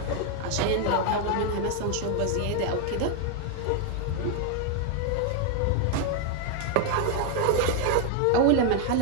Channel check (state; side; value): different; both; correlation 0.00